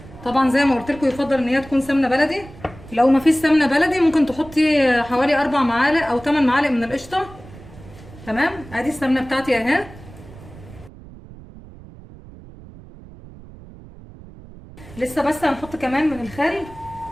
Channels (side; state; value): right; noise; rumble, 19 dB below the sound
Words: طبعا زي ما قلت لكم يفضل ان هي تكون سمنه بلدي. لو ما فيش سمنه بلدي ممكن تحطي حوالي 4 معالق او 8 معالق من القشطه. تمام. ادي السمنه بتاعتي اهي. لسه بس هنحط كمان من الخل